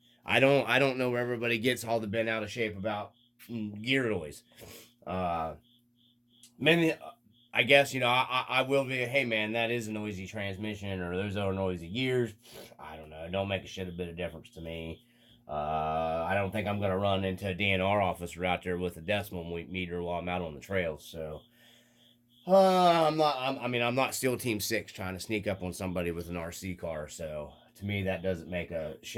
don't know where everybody gets all the bent out of shape about gear noise. I guess, I will be, hey man, that is a noisy transmission, or those are noisy gears. I don't know. It don't make a bit of difference to me. I don't think I'm going to run into a DNR officer out there with a decimal meter while I'm out on the trails. So, I'm not SEAL Team 6 trying to sneak up on somebody with an RC car. So, to me, that doesn't make a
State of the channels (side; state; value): both; identical; correlation 1.00